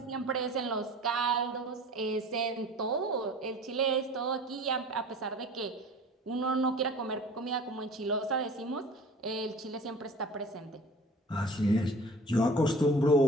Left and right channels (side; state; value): both; normal; correlation 0.43